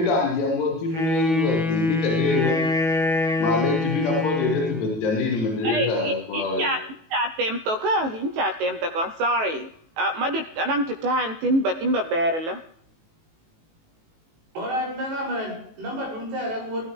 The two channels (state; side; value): late; left; 18 ms